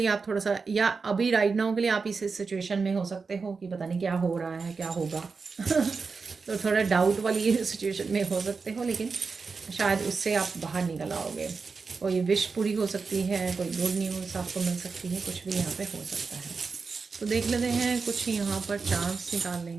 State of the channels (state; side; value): quieter; left; 4.7 dB